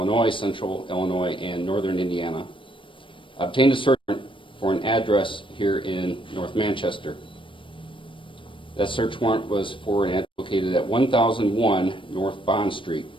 Central Illinois, and Northern Indiana, obtained a search warrant for an address here in North Manchester. That search warrant was for an address located at 1001 North Bond Street.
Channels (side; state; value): right; late; 0.25 ms